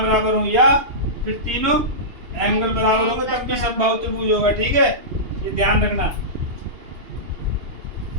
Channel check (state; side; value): late; left; 2.8 ms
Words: बराबर हो, या फिर तीनों एंगल बराबर होंगे तब भी समबाहु त्रिभुज होगा। ठीक है, ये ध्यान रखना।